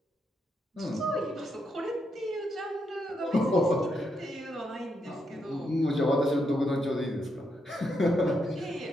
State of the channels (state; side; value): normal; both; correlation 0.80